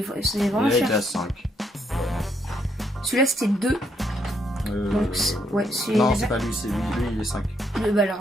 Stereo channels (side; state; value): both; normal; correlation 0.74